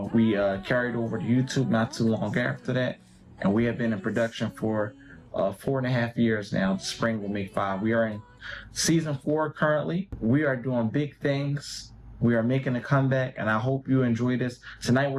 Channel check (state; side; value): identical; both; correlation 1.00